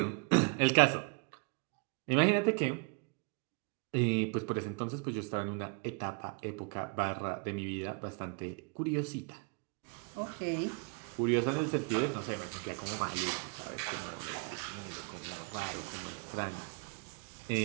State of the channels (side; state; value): left; quieter; 34.6 dB